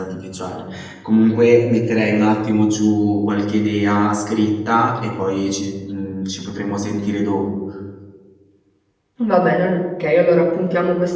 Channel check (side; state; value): both; identical; correlation 1.00